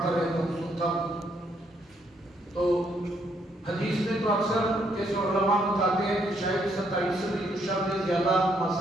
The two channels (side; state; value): both; normal; correlation 0.72